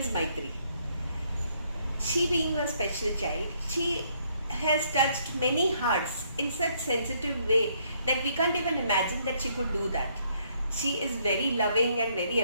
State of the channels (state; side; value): inverted; both; correlation -0.69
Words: Maitri. She being a special child, she has touched many hearts in such sensitive way that we can't even imagine that she could do that. She is very loving and very